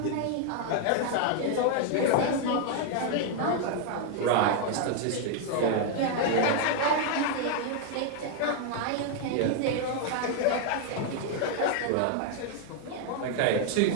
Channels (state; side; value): different; both; correlation 0.00